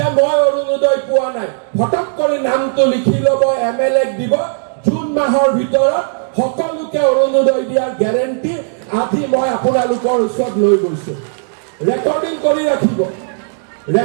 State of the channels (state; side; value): silent; left; digital silence